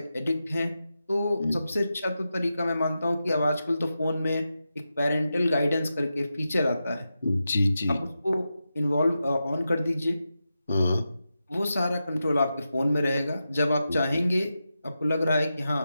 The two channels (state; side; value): inverted; both; correlation -0.90